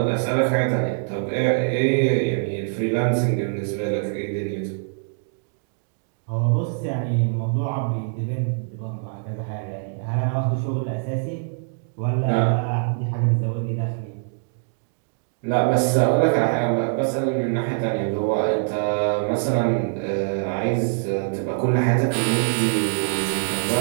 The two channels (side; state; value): left; silent; digital silence